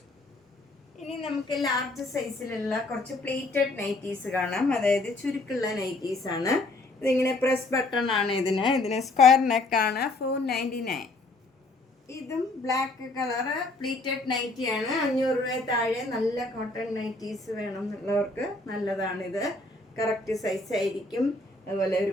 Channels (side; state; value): right; quieter; 3.0 dB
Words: ഇനി നമുക്ക് ലാർജ് സൈസിലുള്ള കുറച്ച് പ്ലേറ്റഡ് നൈറ്റീസ് കാണാം. അതായത് ചുരുക്കുള്ള നൈറ്റീസ് ആണ്. ഇതിങ്ങനെ പ്രസ് ബട്ടൺ ആണ്. ഇതിന് സ്ക്വയർ നെക്കാണ്. 499. ഇതും ബ്ലാക്ക് കളറ് പ്ലേറ്റഡ് നൈറ്റിയാണ്. 500 രൂപ താഴെ നല്ല കോട്ടൺ നൈറ്റീസ് വേണം എന്നുള്ളവർക്ക് നല്ലതാണിത്. കറക്റ്റ് സൈസ് ആയിരിക്കും. അതുപോലെ ഒരു